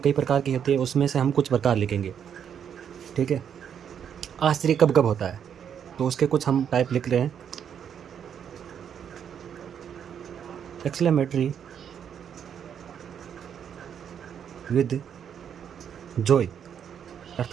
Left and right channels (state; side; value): quieter; left; 8.3 dB